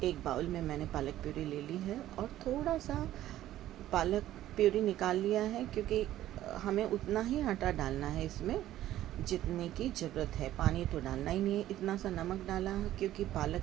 एक बाउल में मैंने पालक प्यूरी ले ली है और थोड़ा सा पालक प्यूरी निकाल लिया है, क्योंकि हमें उतना ही आटा डालना है इसमें जितने की ज़रूरत है। पानी तो डालना ही नहीं है। इतना सा नमक डाला है क्योंकि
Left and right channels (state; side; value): quieter; left; 13.5 dB